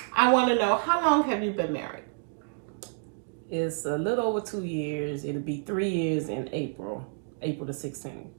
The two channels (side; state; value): left; silent; 59 dB below the other